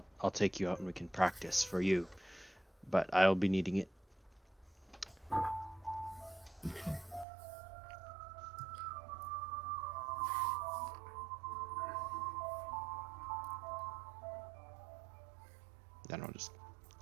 take you out and we can practice for you. But I'll be needing it. Then I'll just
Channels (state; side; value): drops out; left; at 7.2 s